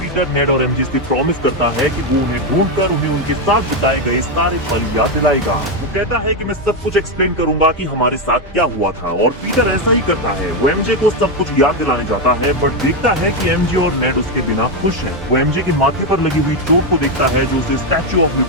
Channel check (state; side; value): normal; both; correlation 0.06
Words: नेड और एमजे से प्रॉमिस करता है कि वो उन्हें ढूंढकर उन्हें उनके साथ बिताए गए सारे पल याद दिलाएगा। वो कहता है कि मैं सब कुछ एक्सप्लेन करूंगा कि हमारे साथ क्या हुआ था, और पीटर ऐसा ही करता है। वो एमजे को सब कुछ याद दिलाने जाता है, बट देखता है कि एमजे और नेड उसके बिना खुश हैं। वो एमजे के माथे पर लगी हुई चोट को देखता है जो उसे स्टैच्यू ऑफ